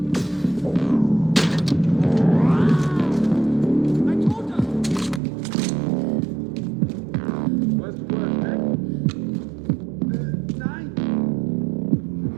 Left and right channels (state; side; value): drops out; left; at 5.2 s